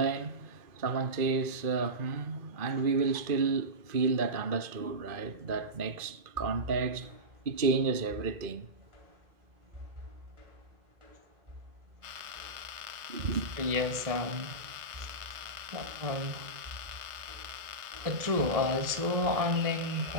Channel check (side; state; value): left; late; 1.6 ms